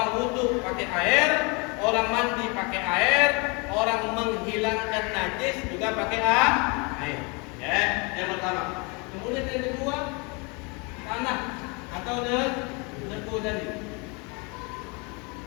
wudu pakai air, orang mandi pakai air, orang menghilangkan najis juga pakai air. Ya, yang pertama. Kemudian yang kedua, tanah atau debu tadi.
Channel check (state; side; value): quieter; right; 30.7 dB